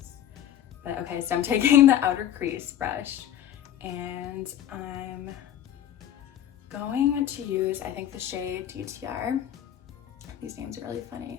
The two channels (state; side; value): quieter; right; 10.9 dB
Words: But okay, so I'm taking the outer crease brush, and I'm going to use, I think, the shade DTR. these names are really funny.